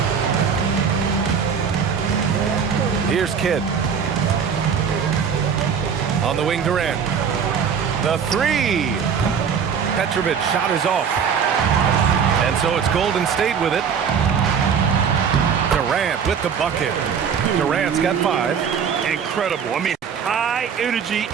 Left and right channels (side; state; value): left; quieter; 6.9 dB